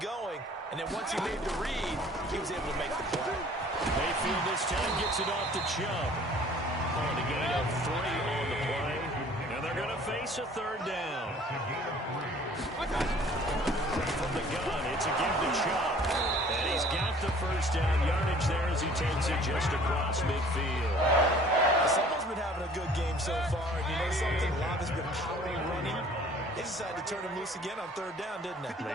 and then once he made the read, he was able to make the play. Mayfield this time gets it off to Chubb. On a gain of 3 on the play. And they're going to face a third down. From the gun, it's a give to Chubb. And he's got the first down yardage there as he takes it just across midfield. Someone's been having a good game so far, and you know something? Love has been power running. They decided to turn him loose again on third down, didn't they?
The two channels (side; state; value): both; normal; correlation 0.52